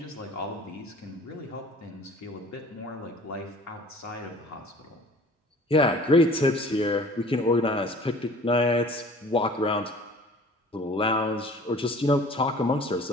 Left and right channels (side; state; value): both; normal; correlation 0.48